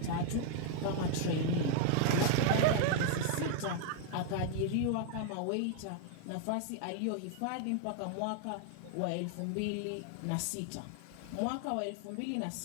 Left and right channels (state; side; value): different; both; correlation 0.00